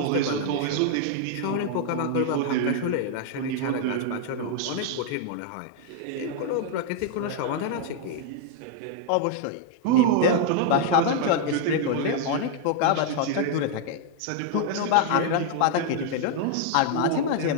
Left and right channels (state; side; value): different; both; correlation 0.00